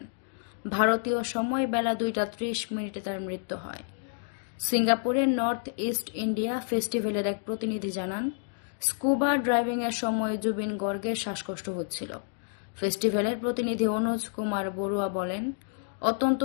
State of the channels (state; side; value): silent; right; digital silence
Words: ভারতীয় সময় বেলা 2:30 তার মৃত্যু হয়। সিঙ্গাপুরের নর্থ ইস্ট ইন্ডিয়া ফেস্টিভ্যালের এক প্রতিনিধি জানান, স্কুবা ড্রাইভিংয়ের সময় জুবিন গর্গের শ্বাসকষ্ট হচ্ছিল। ফেস্টিভ্যালের প্রতিনিধি অনুজ কুমার বড়ুয়া বলেন, অত্যন্ত